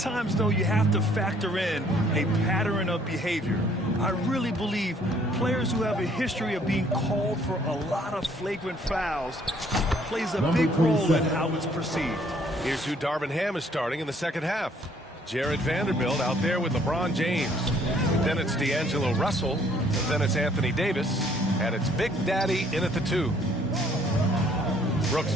though, you have to factor in a pattern of behavior. I really believe players who have a history of being called for a lot of flagrant fouls plays a big role in how it's perceived. Here's who Darvin Ham is starting in the second half. Jared Vanderbilt out there with LeBron James. Then it's D'Angelo Russell. Then it's Anthony Davis. And it's Big Daddy in at the 2. Brooks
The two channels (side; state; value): both; normal; correlation 0.62